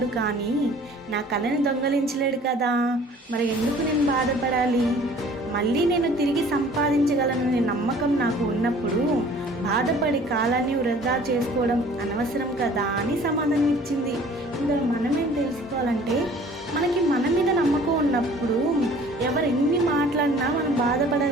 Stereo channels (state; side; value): normal; both; correlation 0.51